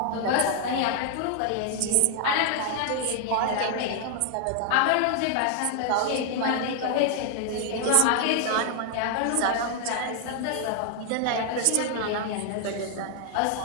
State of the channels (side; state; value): both; different; correlation 0.00